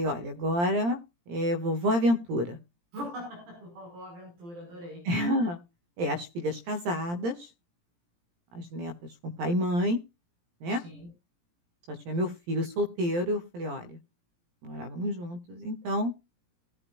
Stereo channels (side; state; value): left; late; 17 ms